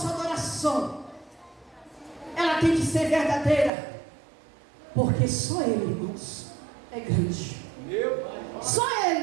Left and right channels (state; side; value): drops out; left; at 3.7 s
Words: adoração, ela tem que ser verdadeira, porque só Ele, irmãos, é grande. Só